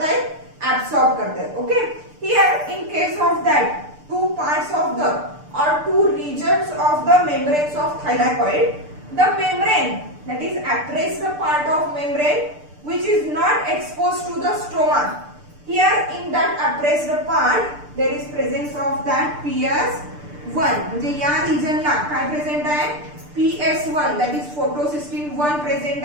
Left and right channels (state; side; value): late; left; 6.8 ms